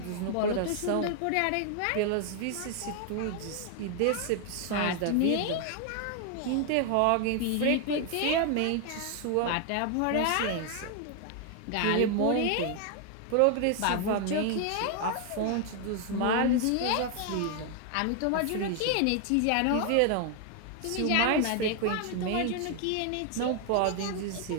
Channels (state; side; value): different; both; correlation 0.00